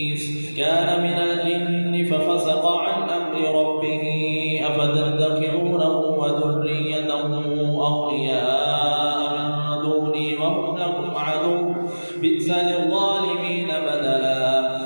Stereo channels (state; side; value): inverted; both; correlation -1.00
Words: كان من الجن ففسق عن أمر ربه أفتتخذونه وذريته أولياء من دوني وهم لكم عدو بئس للظالمين بدلا